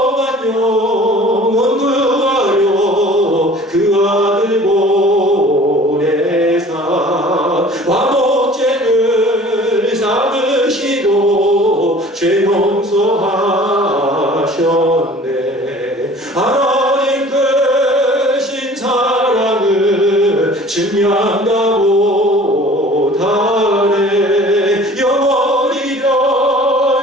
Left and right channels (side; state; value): both; normal; correlation 0.47